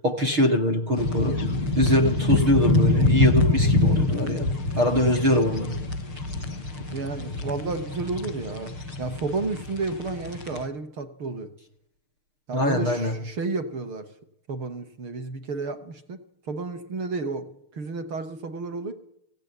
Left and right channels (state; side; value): late; left; 6.6 ms